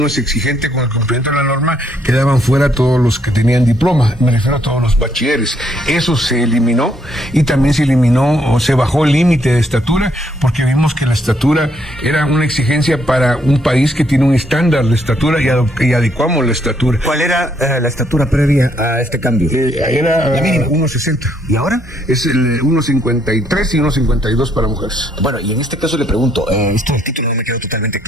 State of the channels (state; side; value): normal; both; correlation 0.71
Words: es exigente con el cumplimiento de la norma, quedaban fuera todos los que tenían diploma, me refiero a todos los bachilleres. Eso se eliminó, y también se eliminó o se bajó el límite de estatura, porque vimos que la estatura era una exigencia para un país que tiene un estándar de estatura, y adecuamos la estatura. ¿Cuál era la estatura previa a este cambio? Era 1.60. ¿Y ahora? Es el 1.53 y 1.52 para mujeres. Bueno, y en este caso le pregunto, esto del título no me quedó totalmente